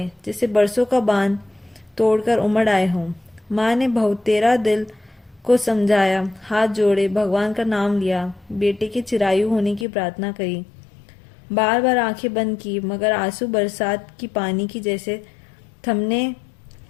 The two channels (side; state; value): right; drops out; at 9.9 s